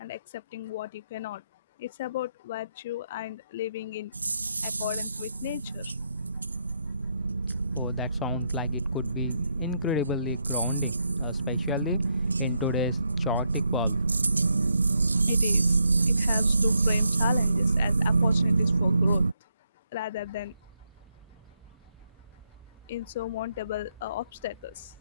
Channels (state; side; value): inverted; both; correlation -0.79